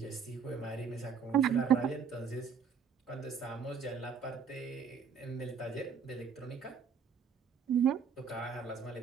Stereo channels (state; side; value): quieter; left; 6.5 dB